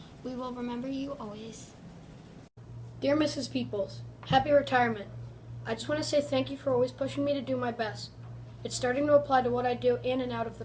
We will remember you always. Dear Mrs. Peoples, happy retirement. I just want to say thank you for always pushing me to do my best. It's starting to apply to what I do in and out of the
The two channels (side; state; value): both; identical; correlation 1.00